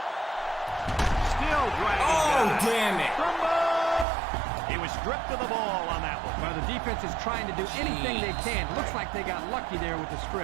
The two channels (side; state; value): left; drops out; at 4.0 s